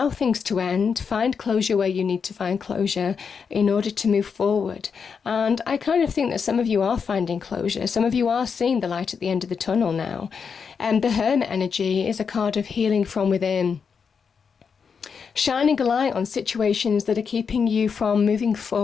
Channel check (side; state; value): right; quieter; 6.1 dB